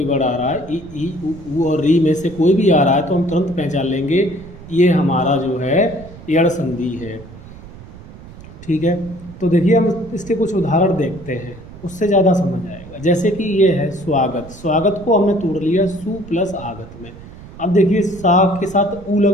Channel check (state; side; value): noise; right; rumble, 17 dB below the sound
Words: वर्ड आ रहा है, ई ऊ और री में से कोई भी आ रहा है, तो हम तुरंत पहचान लेंगे ये हमारा जो है यड़ संधि है। ठीक है, तो देखिए हम इसके कुछ उदाहरण देखते हैं, उससे ज़्यादा समझ आएगा। जैसे कि ये है स्वागत। स्वागत को हमने तोड़ लिया सु प्लस आगत में। अब देखिए सा के साथ ऊ